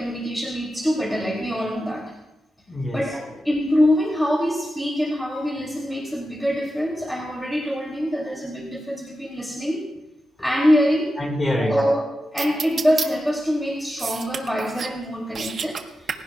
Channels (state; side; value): normal; both; correlation 0.91